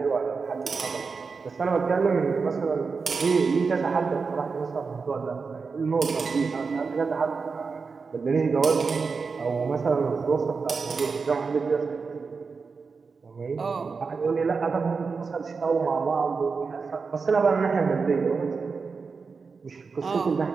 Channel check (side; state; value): left; quieter; 4.9 dB